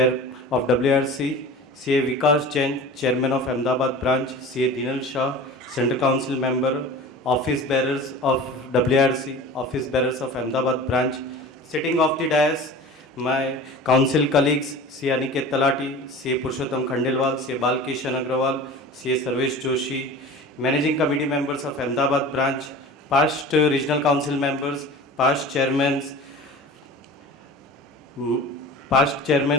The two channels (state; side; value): normal; both; correlation 0.37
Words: of WRC, CA Vikas Jain, Chairman of Ahmedabad Branch, CA Dinal Shah, Central Council Member, Office Bearers of WIRC, Office Bearers of Ahmedabad Branch, sitting off the dais, my council colleagues, CA Aniket Talati, CA Purushottam Khandelwal, CA Balkishan Agrawal, CA Sarvesh Joshi, Managing Committee members of Ahmedabad Branch, past regional council members, past chairmen